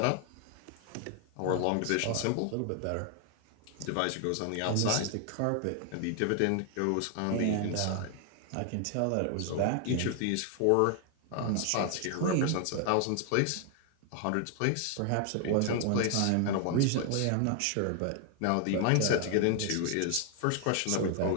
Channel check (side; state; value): both; different; correlation 0.00